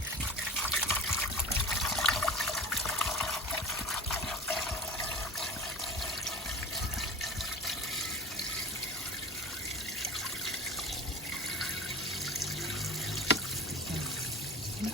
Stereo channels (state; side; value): normal; both; correlation 0.35